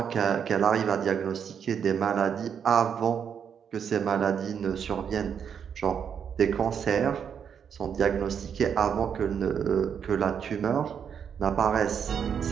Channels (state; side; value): quieter; left; 7.6 dB